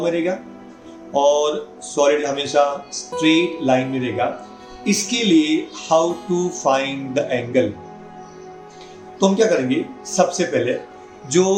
में रहेगा और सॉलिड हमेशा स्ट्रेट लाइन में रहेगा. इसके लिए how to find the angle? तो हम क्या करेंगे, सबसे पहले जो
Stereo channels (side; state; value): both; identical; correlation 1.00